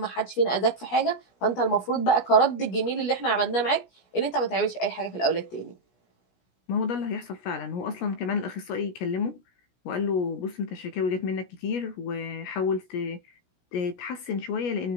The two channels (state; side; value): late; right; 17 ms